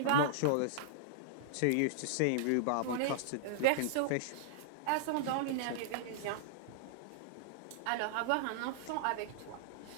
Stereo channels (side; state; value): both; different; correlation -0.01